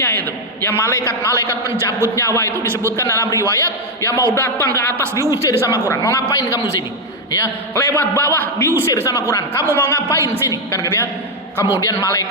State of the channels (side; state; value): both; normal; correlation 0.04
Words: itu. Ya malaikat-malaikat pencabut nyawa itu disebutkan dalam riwayat, ya mau datang ke atas diusir sama Quran. Mau ngapain kamu sini? Ya, lewat bawah diusir sama Quran. Kamu mau ngapain sini? Kan gitu ya. Kemudian